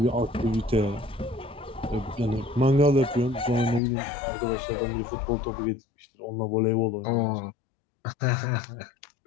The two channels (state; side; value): drops out; right; at 3.8 s